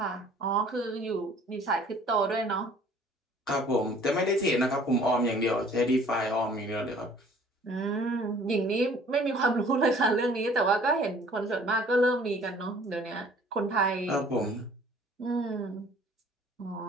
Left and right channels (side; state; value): both; normal; correlation 0.54